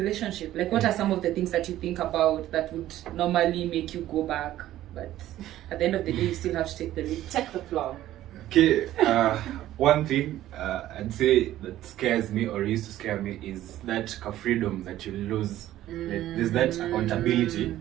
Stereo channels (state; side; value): quieter; left; 13.7 dB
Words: Like, what are some of the things that you think about that would normally make you go back, but at the end of the day you still have to take the lead? Take the floor. Okay, one thing I'd say that scares me, or used to scare me, is that freedom that you lose. Like, there's that accountability